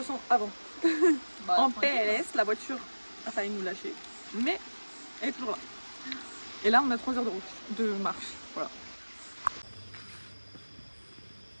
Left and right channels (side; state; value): both; inverted; correlation -1.00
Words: sent avant? En PLS, la voiture a failli nous lâcher, mais elle est toujours là. Et là, on a 3 heures de route, de marche, voilà.